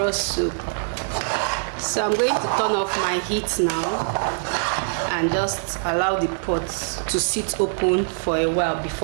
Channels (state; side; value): silent; left; digital silence